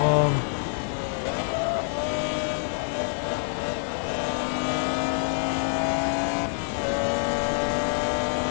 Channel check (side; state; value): right; silent; digital silence